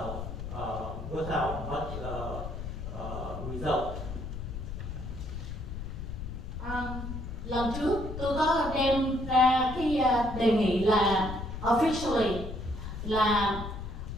without much result. lần trước tôi có đem ra cái đề nghị là officially là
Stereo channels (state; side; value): noise; left; rumble, 7 dB below the sound